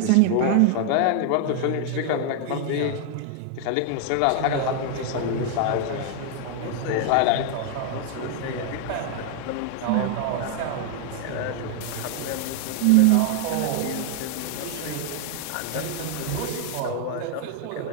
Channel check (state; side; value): different; both; correlation 0.00